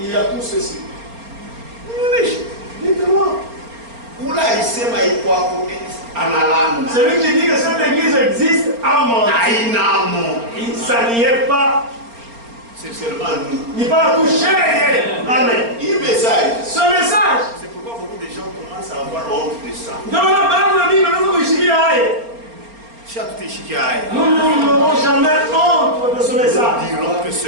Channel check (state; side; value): late; left; 4.3 ms